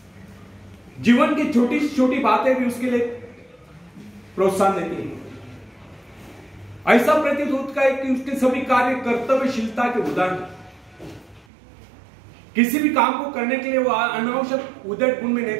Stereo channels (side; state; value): left; drops out; at 11.5 s